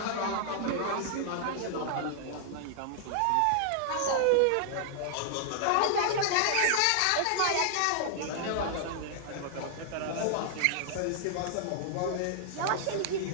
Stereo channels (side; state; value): both; different; correlation 0.00